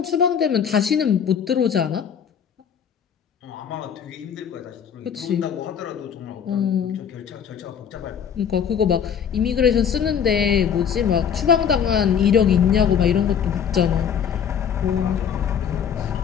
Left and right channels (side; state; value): right; quieter; 7.8 dB